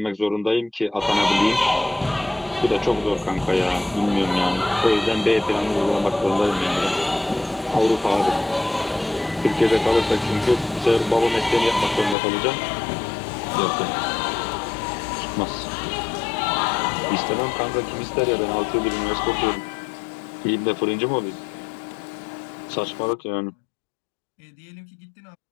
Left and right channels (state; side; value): drops out; right; at 12.2 s